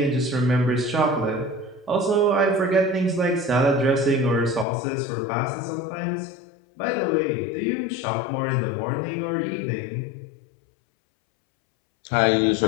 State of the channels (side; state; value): right; drops out; at 4.7 s